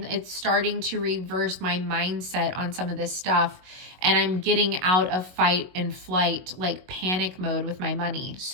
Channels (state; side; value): late; left; 22 ms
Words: it's starting to reverse my mindset on some of this stuff. And I'm getting out of fight and flight, like panic mode with my money.